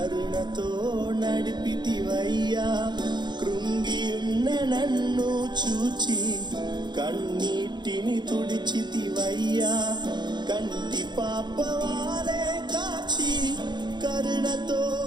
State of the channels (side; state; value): left; late; 0.21 ms